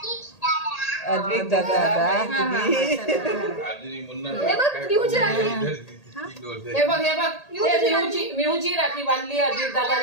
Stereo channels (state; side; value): late; right; 1.8 ms